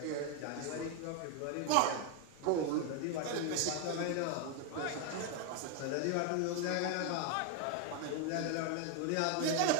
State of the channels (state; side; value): different; both; correlation 0.01